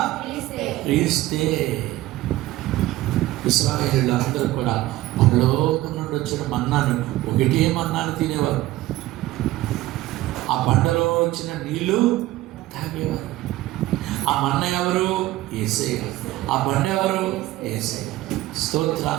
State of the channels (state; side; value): quieter; left; 16.6 dB